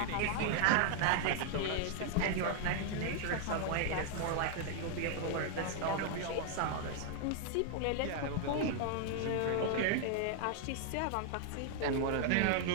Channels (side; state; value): both; different; correlation 0.00